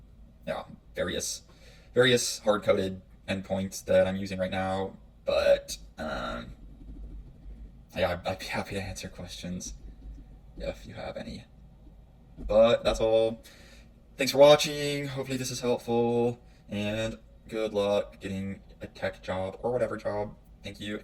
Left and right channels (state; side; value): identical; both; correlation 1.00